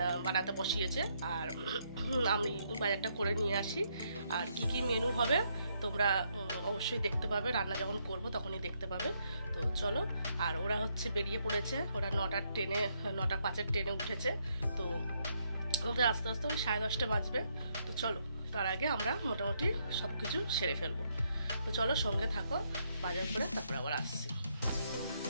বানাতে বসিয়েছে। আর আমি বাজারটা করে নিয়ে আসি। আর কি কি মেনু হবে তোমরা অবশ্যই দেখতে পাবে, রান্না যখন করব তখনই দেখতে পাবে। তো চলো, আর ওরা হচ্ছে বেরিয়ে পড়েছে, ওরা 9:05-এর ট্রেনে উঠেছে। তো ওদের আস্তে আস্তে ওই 10:30 বাজবে। তো চলো, তার আগে আমরা মোটামুটি সব কিছু সেরে ফেলবো। তো চলো, সঙ্গে থাকো, বাজার করে তারপর আবার আসছি।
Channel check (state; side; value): inverted; both; correlation -0.75